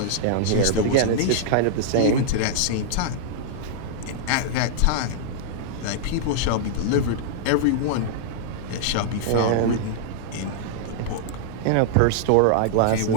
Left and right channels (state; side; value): different; both; correlation -0.01